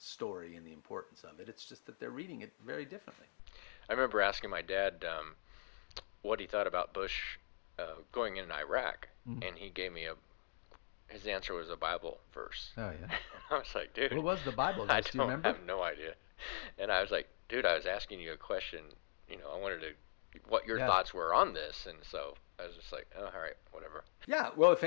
and the importance of it. It's just that they're reading it very differently. I remember asking my dad what he thought about Bush going in Iraq, and he gave me his answer was a Bible verse. Oh, yeah. And I was like, dude. What was the Bible verse? Do you remember? I have no idea. And I was like, dude, I was asking you a question. I wanted what your thoughts were on this. And so I was just like, oh, all right, whatever. Yeah, well, if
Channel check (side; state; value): right; silent; digital silence